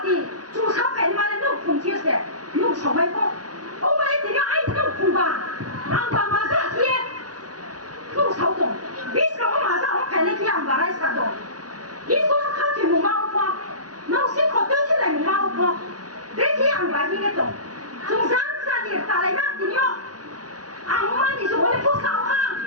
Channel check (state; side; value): late; left; 0.68 ms